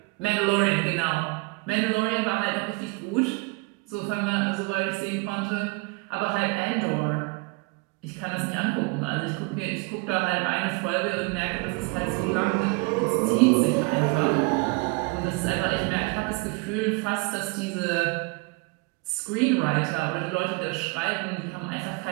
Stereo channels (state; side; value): quieter; left; 28.4 dB